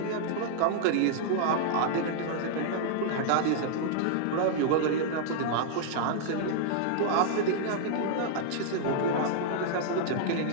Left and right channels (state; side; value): different; both; correlation -0.01